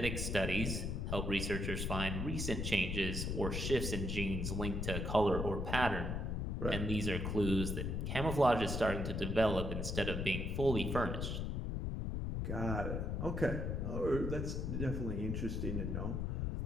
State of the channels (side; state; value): left; noise; rumble, 1 dB below the sound